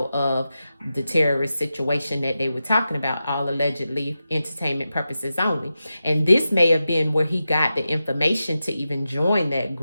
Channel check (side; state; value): both; inverted; correlation -0.91